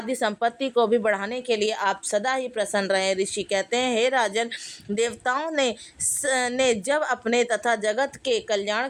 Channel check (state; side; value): identical; both; correlation 1.00